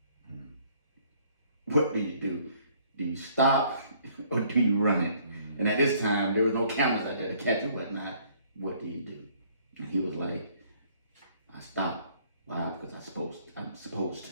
Mm. What do you do? Do you stop or do you run it? And at this time, there was no cameras out there to catch it, whatnot. What do you do? And he was like, I stopped. Why? Because I'm supposed to.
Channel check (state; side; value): inverted; both; correlation -0.61